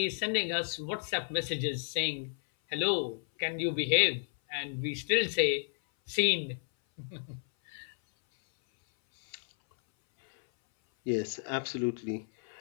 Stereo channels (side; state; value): right; silent; 57 dB below the other